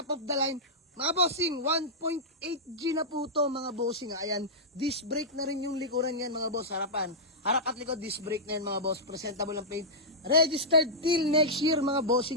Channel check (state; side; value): normal; both; correlation -0.11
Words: of the line. Mga bossing, 1.8G na po to mga bossing. Ayan, disc brake na rin yung likuran yan mga boss. Harapan. Harap at likod, disc brake na yan mga boss. Presentable ang paint. Registered till next year mga